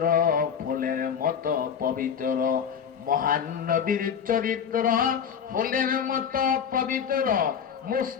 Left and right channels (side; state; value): right; quieter; 7.5 dB